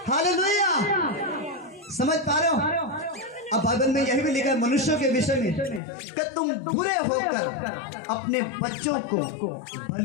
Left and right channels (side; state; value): right; drops out; at 5.8 s